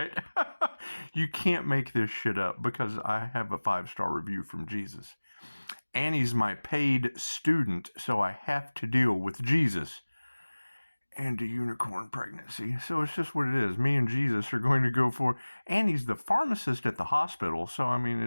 You can't make this shit up because I have a 5-star review from Jesus. Annie's my paid student, so I have to deal with Jesus and a unicorn pregnancy. So it's just what it is. Me and Jesus are going to go for... Annie's the pharmacist at the hospital, so I mean,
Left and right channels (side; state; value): both; inverted; correlation -1.00